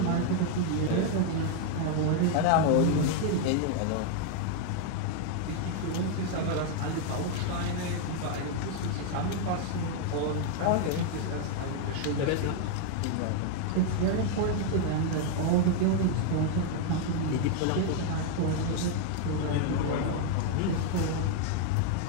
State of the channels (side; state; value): both; different; correlation 0.00